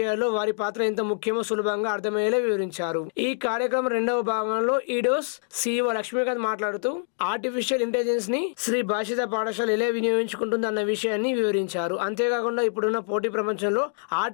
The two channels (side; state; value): right; silent; digital silence